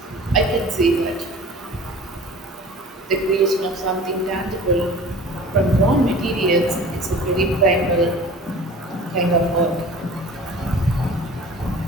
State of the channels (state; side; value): normal; both; correlation 0.42